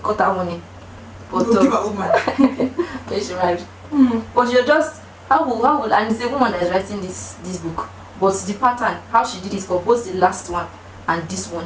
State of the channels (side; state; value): both; identical; correlation 1.00